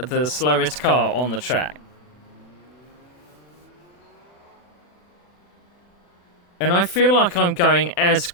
slowest car on the track. And I feel like I'm going as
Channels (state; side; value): late; right; 40 ms